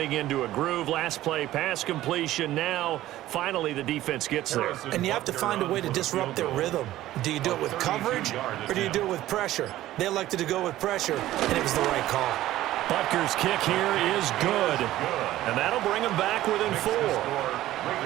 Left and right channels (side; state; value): left; quieter; 14.8 dB